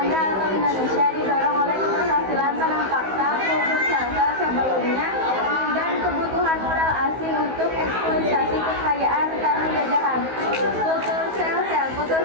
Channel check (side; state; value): left; late; 16 ms